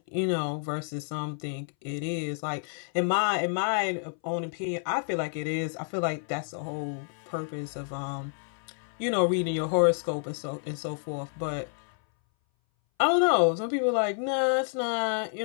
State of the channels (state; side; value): silent; right; 58 dB below the other